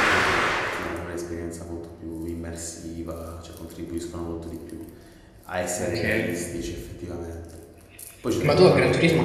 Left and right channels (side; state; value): both; identical; correlation 1.00